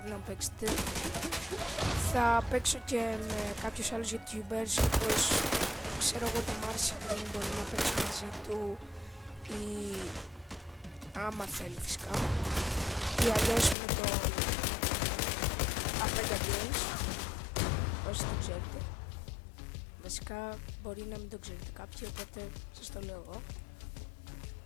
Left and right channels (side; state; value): right; drops out; at 13.8 s